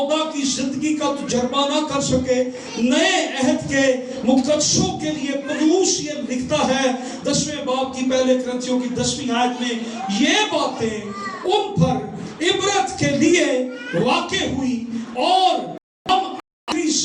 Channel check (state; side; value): identical; both; correlation 1.00